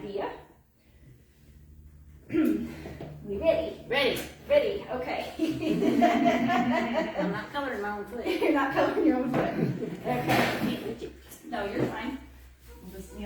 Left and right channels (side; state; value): both; identical; correlation 1.00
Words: We ready? Ready, okay. I'm not coloring my own foot. You're not coloring your own foot. Okay. No, you're fine. We'll just